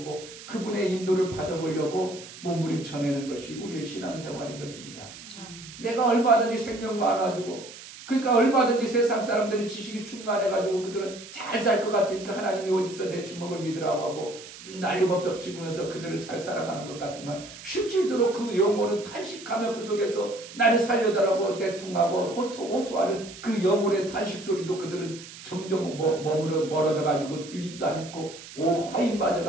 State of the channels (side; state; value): right; noise; hiss, 15 dB below the sound